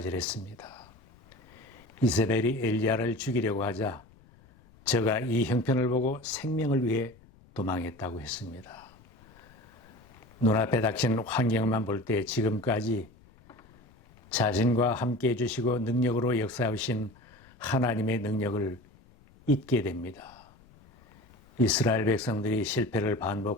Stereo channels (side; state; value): left; noise; rumble, 26 dB below the sound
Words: 이세벨이 엘리야를 죽이려고 하자 저가 이 형편을 보고 생명을 위해 도망했다고 했습니다. 눈앞에 닥친 환경만 볼 때 지금까지 자신과 함께 해주시고 능력으로 역사하신 하나님의 능력을 잊게 됩니다. 이스라엘 백성들이 실패를